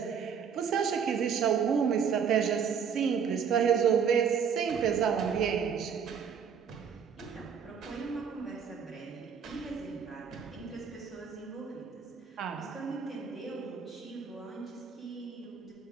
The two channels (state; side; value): quieter; left; 6.9 dB